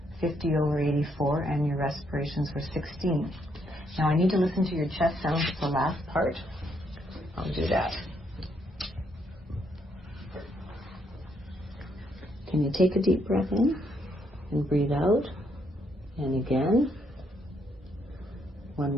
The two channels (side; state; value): both; normal; correlation 0.74